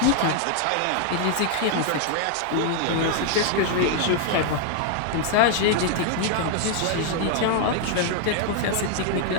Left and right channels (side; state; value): both; different; correlation 0.00